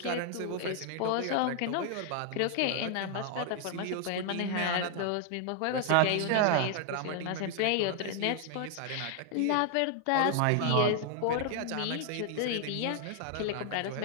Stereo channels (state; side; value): different; both; correlation 0.00